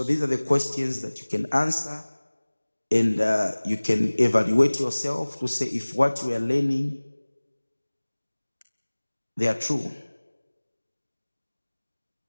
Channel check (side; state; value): both; inverted; correlation -1.00